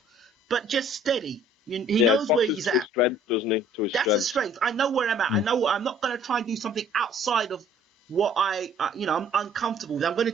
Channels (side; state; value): both; normal; correlation 0.55